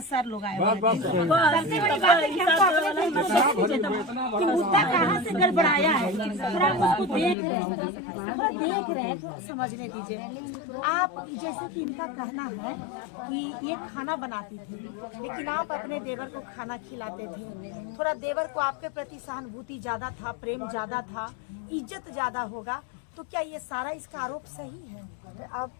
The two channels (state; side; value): drops out; right; at 7.4 s